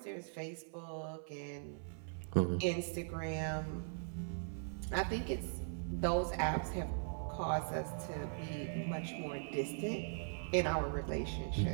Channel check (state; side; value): silent; left; 51 dB below the other